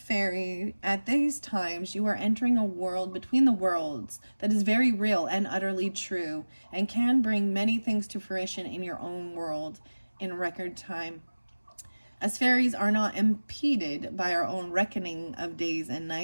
at these times, you are entering a world between the worlds that is very real and utterly true, and can bring many things to fruition in your own world in record time. As fairies are not impeded by our own reckoning of days and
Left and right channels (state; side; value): inverted; both; correlation -1.00